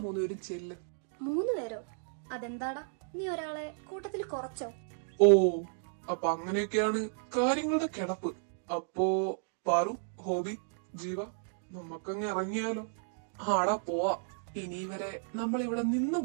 3 പേരും ചെല്ല്. 3 പേരോ? അതെന്താടാ, നീ ഒരാളെ കൂട്ടത്തിൽ കുറച്ചോ? ഓ, അപ്പൊ അങ്ങനെയൊക്കെയാണ് കാര്യങ്ങളുടെ കിടപ്പ്. അപ്പോ പാറു, ഹോബി, ജീവ, നമുക്കങ്ങ് ഇറങ്ങിയാലോ? ആടാ പോവാ. ഇനി വരെ നമ്മൾ ഇവിടെ നിന്ന്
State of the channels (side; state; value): left; silent; digital silence